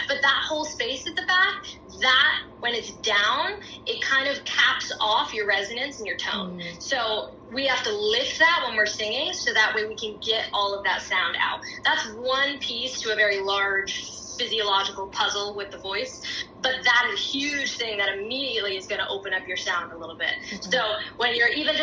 but that whole space at the back, that, when it's down, it kind of caps off your resonance and your tone. So we have to lift that when we're singing, so that way we can get all of that sound out. That's one piece to a very large physiological puzzle with the voice, but that is a huge thing that immediately is going to open up your sound a little bit. So when you're even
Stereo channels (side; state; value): both; identical; correlation 1.00